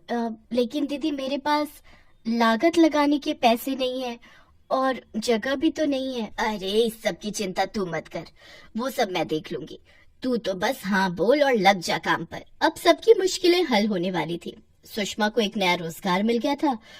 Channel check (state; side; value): identical; both; correlation 1.00